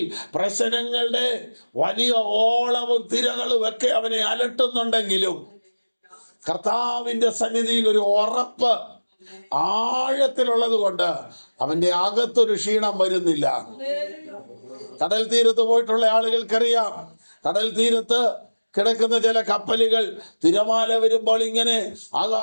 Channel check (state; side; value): inverted; both; correlation -1.00